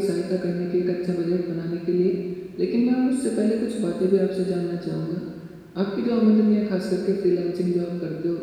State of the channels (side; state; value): both; identical; correlation 1.00